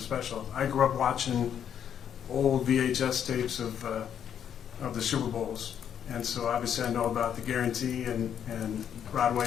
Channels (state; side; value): quieter; right; 8.9 dB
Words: special. I grew up watching old VHS tapes of the Super Bowls, and so obviously I know about the guarantee and